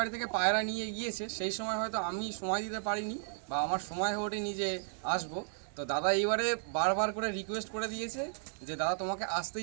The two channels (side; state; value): left; silent; digital silence